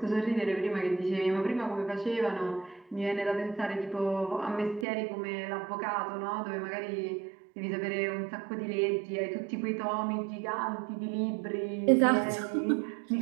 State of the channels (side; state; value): left; drops out; at 4.9 s